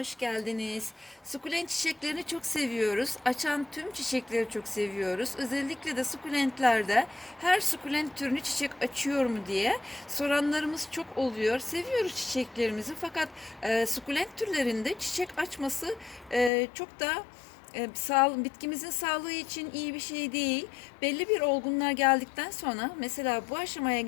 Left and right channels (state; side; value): drops out; right; at 16.5 s